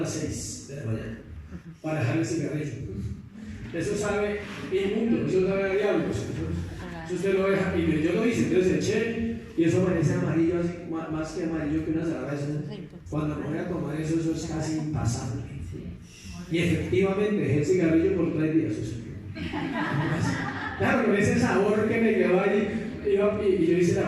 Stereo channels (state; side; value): identical; both; correlation 1.00